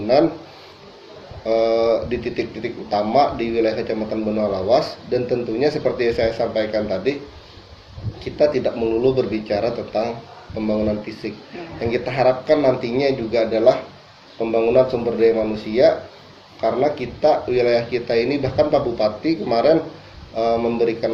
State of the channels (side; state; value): both; identical; correlation 1.00